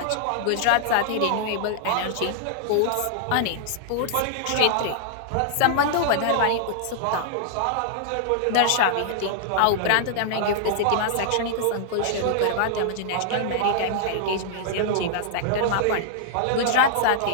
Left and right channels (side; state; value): both; different; correlation -0.01